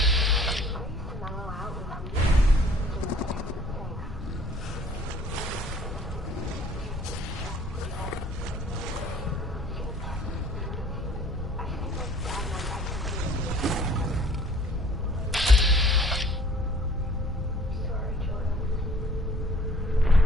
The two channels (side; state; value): both; normal; correlation 0.54